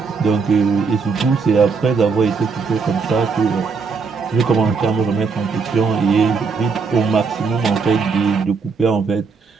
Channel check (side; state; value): left; quieter; 5.0 dB